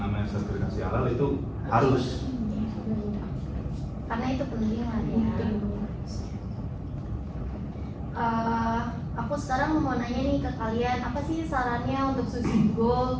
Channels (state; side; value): identical; both; correlation 1.00